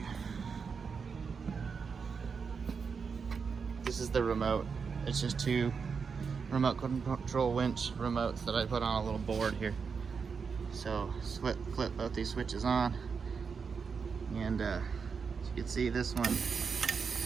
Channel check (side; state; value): left; quieter; 5.7 dB